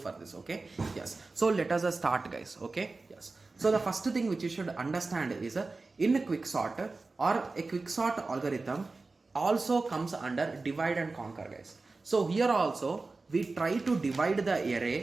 this. Okay, yes. So let us start, guys. Okay, yes. So the first thing which you should understand is in a quicksort or a quicksort algorithm also comes under divide and conquer, guys. So here also we try to divide the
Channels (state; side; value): quieter; left; 3.7 dB